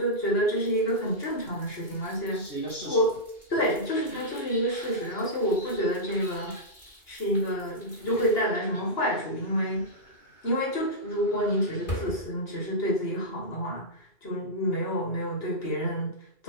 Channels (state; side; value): late; right; 2.4 ms